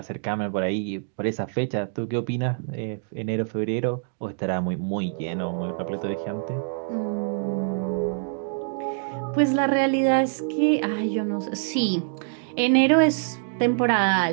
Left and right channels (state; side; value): silent; left; digital silence